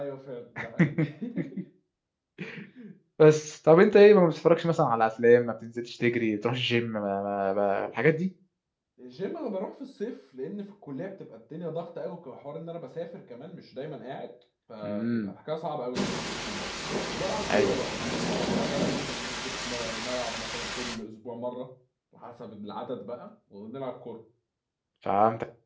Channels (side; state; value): both; identical; correlation 1.00